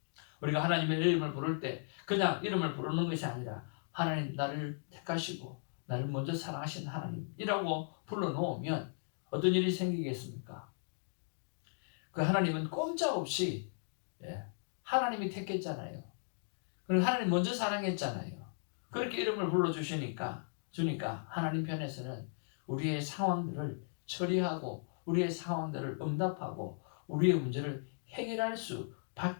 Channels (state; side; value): silent; right; digital silence